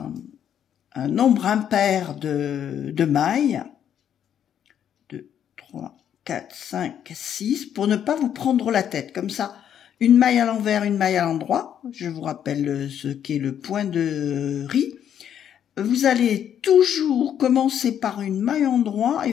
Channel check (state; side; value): quieter; right; 9.4 dB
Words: nombre impair de mailles. 2, 3, 4, 5, 6, pour ne pas vous prendre la tête. Comme ça, une maille à l'envers, une maille à l'endroit. Je vous rappelle ce qu'est le point de riz. Vous allez toujours commencer par une maille endroit